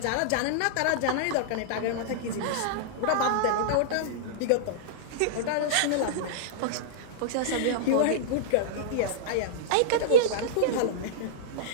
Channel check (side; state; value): both; different; correlation -0.02